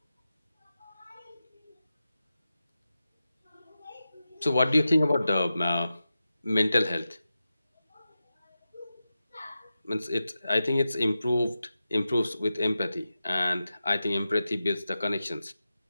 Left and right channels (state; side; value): inverted; both; correlation -0.92